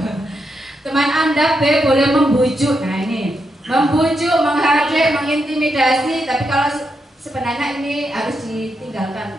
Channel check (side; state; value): both; normal; correlation 0.83